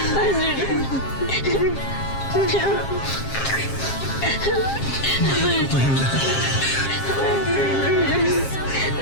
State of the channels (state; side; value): late; right; 7.5 ms